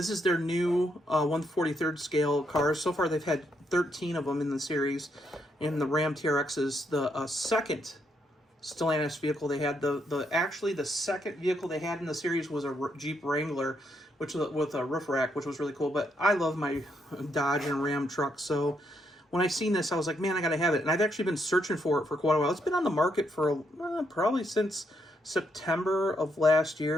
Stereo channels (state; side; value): normal; both; correlation 0.77